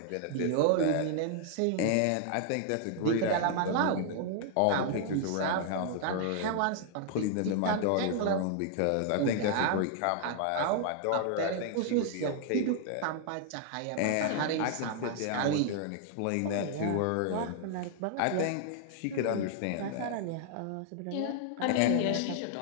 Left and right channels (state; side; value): different; both; correlation 0.00